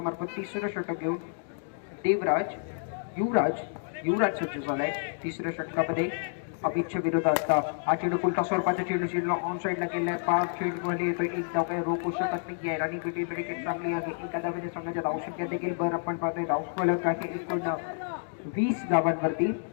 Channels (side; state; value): right; silent; digital silence